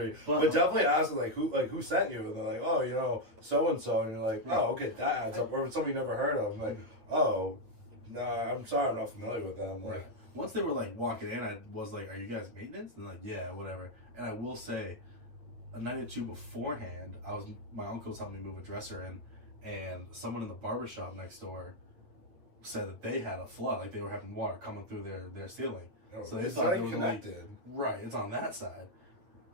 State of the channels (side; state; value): left; late; 9.2 ms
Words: But definitely ask them, like, who sent you? And they're like, oh, you know, so-and-so. And you're like, oh, okay, that adds up. Or somebody you never heard of. I'm like, oh, no, I'm sorry, I'm not familiar with them. Like, Right. Once they were like walking in, I was like, "Are you guys maintenance?" And they're like, "Yeah, whatever." And I will say, a night or two beforehand, my uncle was helping me move a dresser in, and someone in the barbershop next door said that they had a flood, like they were having water coming through their ceiling. oh, So they it's thought not it even was a leak. connected. Right, it's on that side.